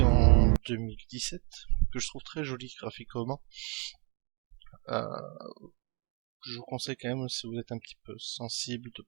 en 2017, que je trouve très joli graphiquement. Euh, je vous conseille quand même, si vous êtes un petit peu sensible, de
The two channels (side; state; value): left; quieter; 31.0 dB